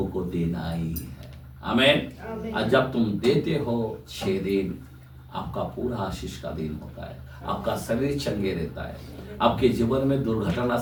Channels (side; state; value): both; identical; correlation 1.00